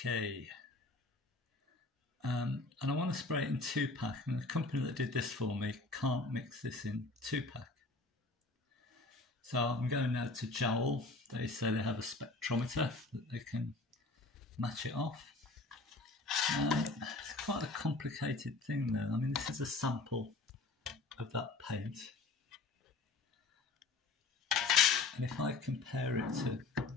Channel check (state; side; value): quieter; right; 3.6 dB